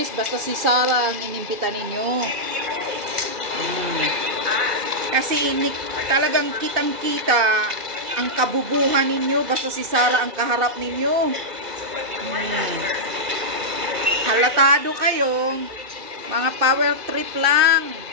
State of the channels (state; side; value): late; left; 2.6 ms